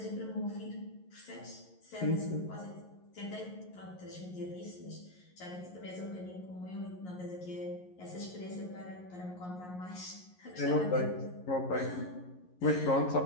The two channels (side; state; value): right; late; 11 ms